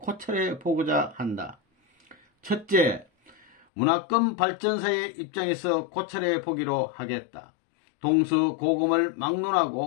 보고자 한다. 첫째, 문화권 발전사의 입장에서 고찰해 보기로 하겠다. 동서고금을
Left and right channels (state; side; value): drops out; right; at 3.7 s